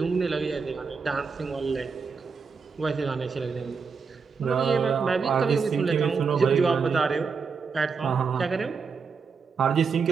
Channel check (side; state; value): left; quieter; 5.3 dB